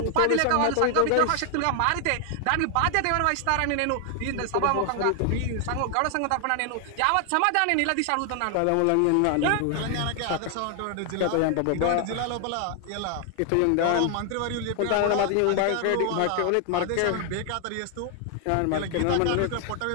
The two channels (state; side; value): different; both; correlation 0.00